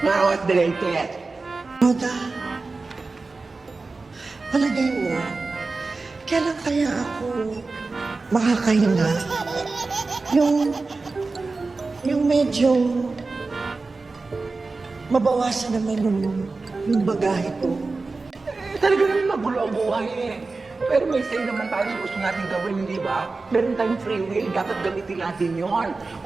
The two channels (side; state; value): left; quieter; 3.8 dB